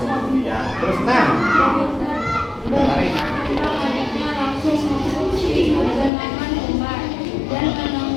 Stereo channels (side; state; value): right; drops out; at 6.1 s